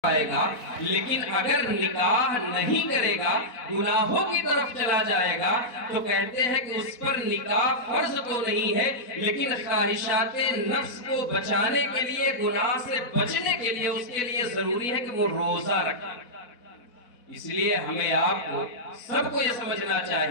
آئے گا، لیکن اگر نکاح نہیں کرے گا، گناہوں کی طرف چلا جائے گا، تو کہتے ہیں کہ اس پر نکاح فرض تو نہیں ہے، لیکن خواہشات نفس کو بچانے کے لیے، گناہ سے بچنے کے لیے اس کے لیے ضروری ہے کہ وہ روزہ رکھے۔ اس لیے ہمیں آپ کو سب کو یہ سمجھنا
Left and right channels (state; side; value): late; right; 4.1 ms